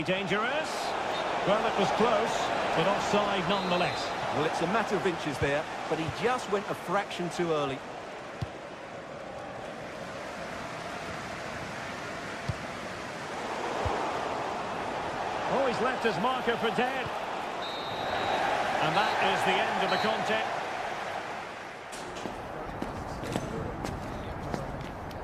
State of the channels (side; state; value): both; identical; correlation 1.00